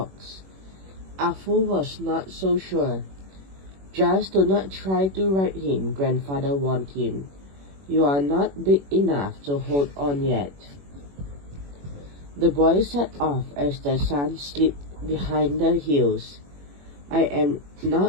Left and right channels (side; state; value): left; late; 21 ms